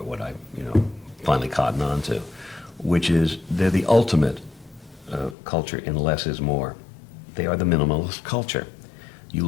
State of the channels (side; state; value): right; drops out; at 5.4 s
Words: what I, finally cottoned on to, which is they're the ultimate culture in less is more. They are the minimalist culture. You